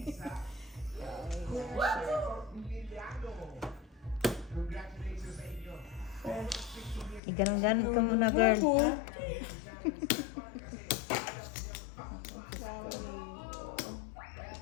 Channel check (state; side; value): drops out; right; at 7.2 s